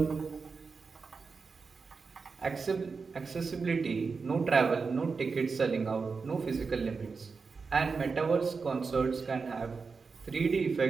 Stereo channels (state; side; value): quieter; left; 4.8 dB